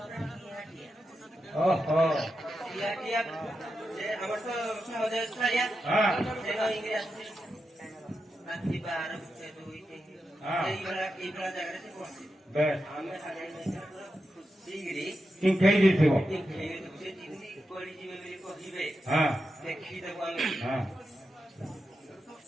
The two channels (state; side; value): normal; both; correlation 0.88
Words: ओहो আমার তো সহজে ছাড়িয়া হ্যাঁ রাত্রি 12 2 হ্যাঁ এইগুলা জায়গাতে পৌঁছি বেশ আমি আগে সিগরি তিন খেই দিছিও তিন খেই দিছি তিন পড়ি জিবে বলি কহিবে হ্যাঁ দেখি দেব আমি হ্যাঁ